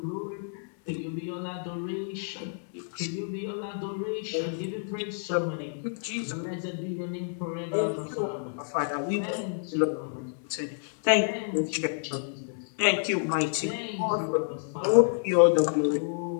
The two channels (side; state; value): right; silent; 58 dB below the other